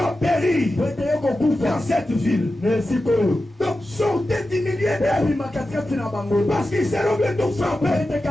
périr dans cette ville. Donc sortez du milieu d'elle. Parce qu'ils seront bientôt frappés.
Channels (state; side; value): normal; both; correlation 0.92